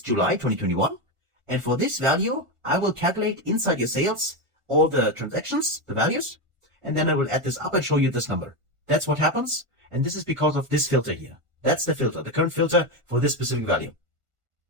July 2021. And for this value, I will calculate inside your sales all the transactions, the values, and then I will add this up and show you this number. That's what happens. And this is because of this filter here. That's the filter, the current filter for this specific value.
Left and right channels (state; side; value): late; left; 1.5 ms